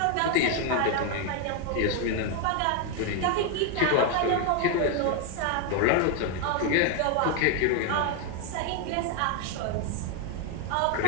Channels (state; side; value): different; both; correlation 0.01